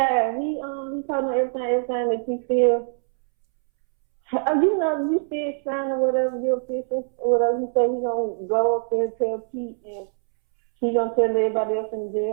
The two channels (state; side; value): silent; left; 63 dB below the other